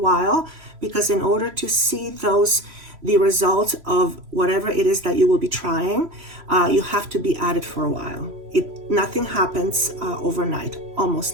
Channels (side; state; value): left; late; 3.0 ms